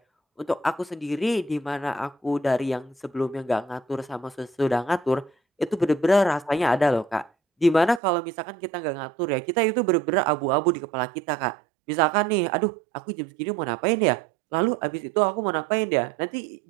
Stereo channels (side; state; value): left; drops out; at 8.0 s